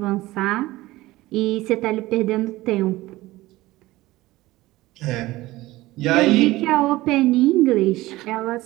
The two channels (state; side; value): quieter; left; 18.3 dB